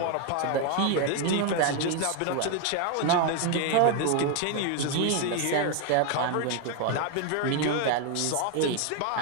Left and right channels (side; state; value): both; different; correlation 0.01